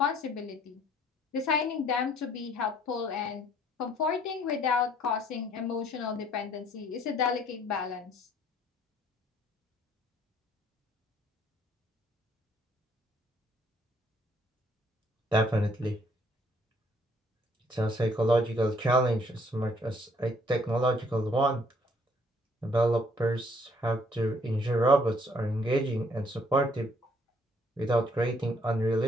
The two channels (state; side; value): normal; both; correlation 0.64